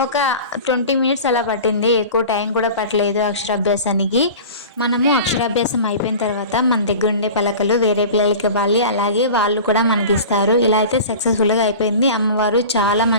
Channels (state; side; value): inverted; both; correlation -0.36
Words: ఒక 20 మినిట్స్ అలా పట్టింది, ఎక్కువ టైం కూడా పట్టలేదు అక్షరాభ్యాసానికి. మనము అక్షరాభ్యాసం అయిపోయిన తర్వాత మన దగ్గర ఉండే పలకలు వేరే పిల్లలకి ఇవ్వాలి, అలాగే వాళ్ళు కూడా మనకి ఇస్తారు. ఇలా అయితే సక్సెస్ఫుల్గా అయిపోయింది. అమ్మవారు చాలా